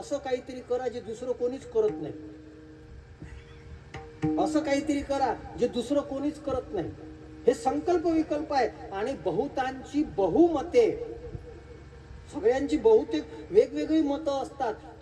काहीतरी करा जे दुसरं कोणीच करत नाही. असं काहीतरी करा जे दुसरं कोणीच करत नाही. हे संकल्प विकल्प आहे. आणि बहुतांची बहुमते, सगळ्यांची बहुतेक वेगवेगळी मतं असतात.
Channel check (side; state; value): both; identical; correlation 1.00